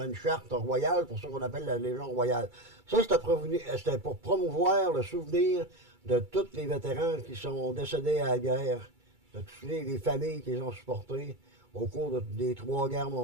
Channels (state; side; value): late; left; 2.3 ms